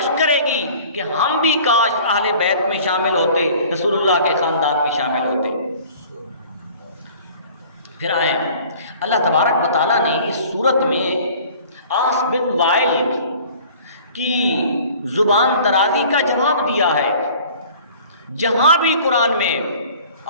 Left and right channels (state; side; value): inverted; both; correlation -0.48